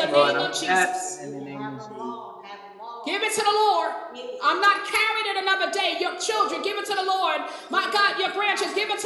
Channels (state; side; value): identical; both; correlation 1.00